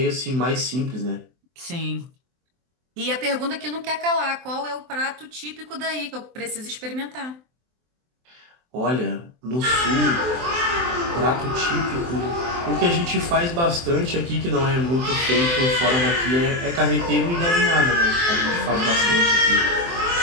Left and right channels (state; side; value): late; left; 23 ms